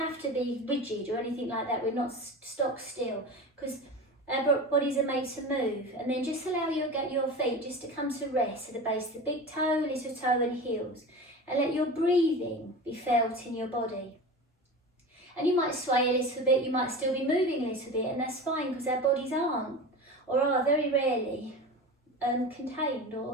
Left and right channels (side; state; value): both; normal; correlation 0.31